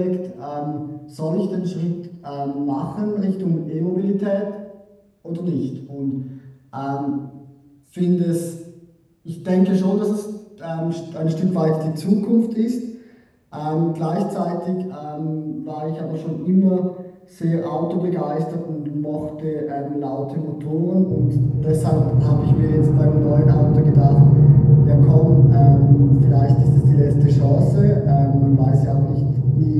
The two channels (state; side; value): identical; both; correlation 1.00